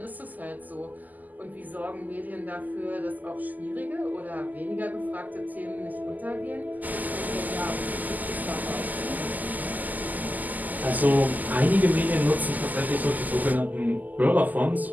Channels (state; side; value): late; left; 0.082 ms